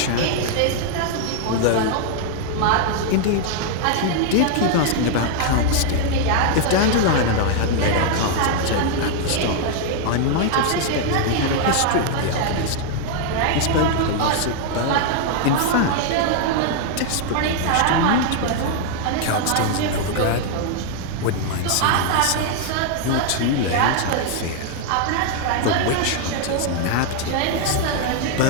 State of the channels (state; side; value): different; both; correlation 0.00